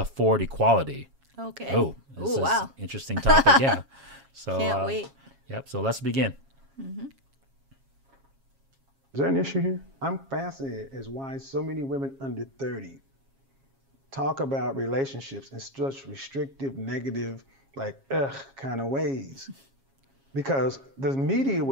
Equality? Okay. Oh, this is wow. interesting topic. Yeah. So Can't wait. Yep. So let's begin. Is there an issue here? I'm fascinated as why so many women under 30 talk about relationships in such restrictive, negative, like kind of ways. Because the media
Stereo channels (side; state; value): left; late; 7.3 ms